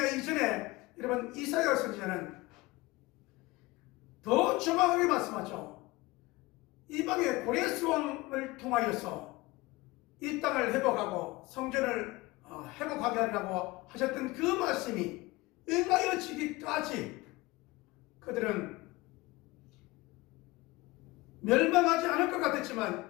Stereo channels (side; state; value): right; quieter; 21.2 dB